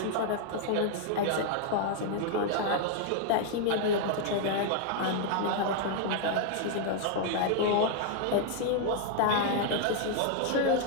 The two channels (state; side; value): different; both; correlation 0.00